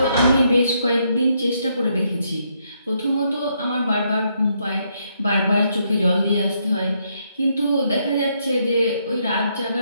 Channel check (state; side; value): inverted; both; correlation -0.75